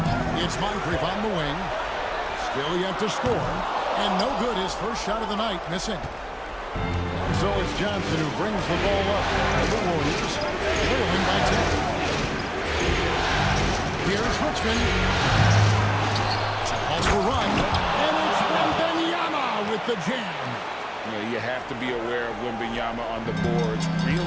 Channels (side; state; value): both; identical; correlation 1.00